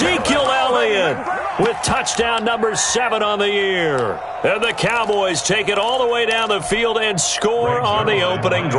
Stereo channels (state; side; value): identical; both; correlation 1.00